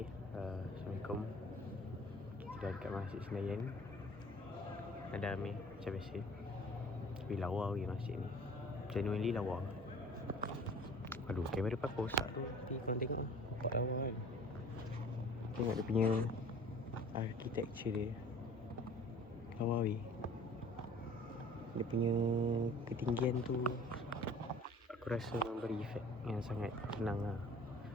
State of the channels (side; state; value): both; normal; correlation 0.48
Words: Assalamualaikum. Kita dekat Masjid Senayan. Ada Amir macam biasa. Tapi lawa weh masjid ni. Genuinely lawa. Aduh, kamera pakai rosak tu. Tapi korang tengok lah, nampak lawa kan. Tengok dia punya architecture dia. Lawa weh. Dia punya ketinggian tu aku rasa memberi efek yang sangat tenang lah.